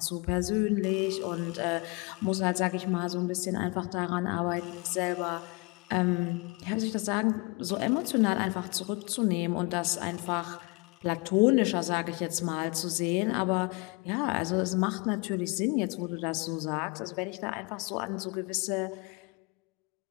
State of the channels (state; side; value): quieter; right; 28.1 dB